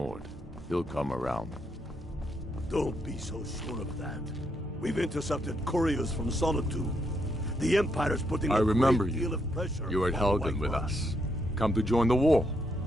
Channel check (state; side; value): normal; both; correlation 0.77